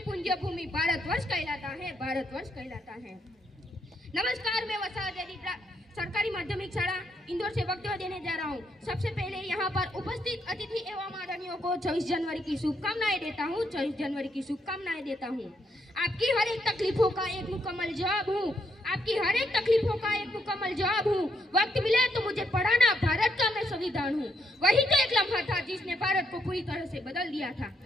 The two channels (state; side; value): normal; both; correlation 0.76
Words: पुंज भूमि भारतवर्ष कहलाता है, भारतवर्ष कहलाता है। नमस्कार, मैं वसाहत सरकारी माध्यमिक शाला इंदौर से वक्तव्य देने जा रहा हूँ। सबसे पहले यहाँ पर उपस्थित अतिथि एवं आदरणीयों को 24 जनवरी की शुभकामनाएं देता हूँ, 24 जनवरी की शुभकामनाएं देता हूँ। आपकी हर एक तकलीफों का एक मुकम्मल जवाब हूँ, आपकी हर एक तकलीफों का एक मुकम्मल जवाब हूँ। वक्त मिले तो मुझे पढ़ाना, भारत का मैं संविधान हूँ। वही तो एक लम्हा था जिसने भारत को पूरी तरह से बदल दिया था।